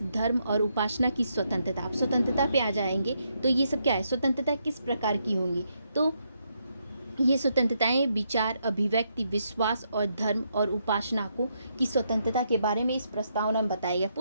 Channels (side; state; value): both; inverted; correlation -0.78